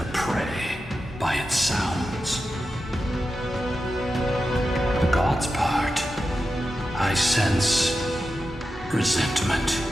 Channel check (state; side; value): normal; both; correlation 0.91